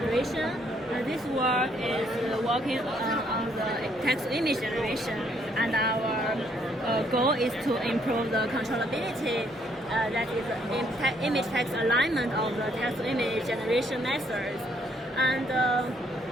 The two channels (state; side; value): normal; both; correlation 0.68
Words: This work is working on the text-to-image generation, and our goal is to improve the controllability, that is image-text alignment of the text-to-image generation methods. And